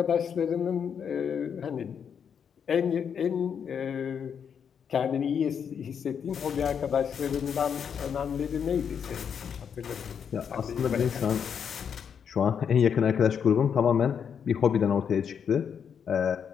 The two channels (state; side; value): quieter; right; 7.4 dB